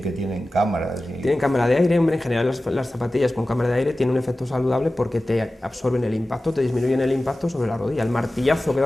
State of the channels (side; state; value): both; normal; correlation 0.96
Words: que tienen cámaras. Tienen cámara de aire, hombre, en general las zapatillas con cámara de aire tienen un efecto saludable porque te absorben el impacto, te disminuyen el impacto sobre la rodilla, el martillazo que